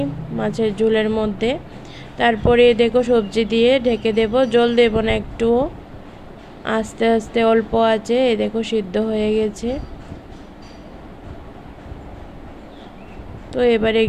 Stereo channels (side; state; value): both; identical; correlation 1.00